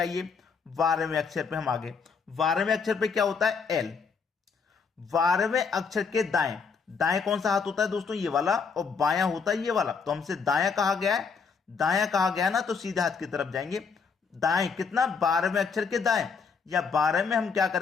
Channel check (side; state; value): right; quieter; 5.5 dB